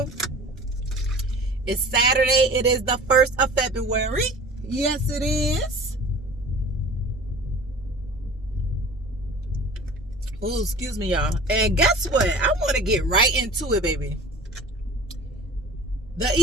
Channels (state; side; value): normal; both; correlation 0.42